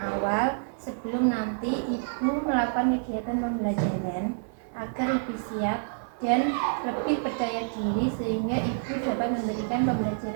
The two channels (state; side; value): silent; left; 59 dB below the other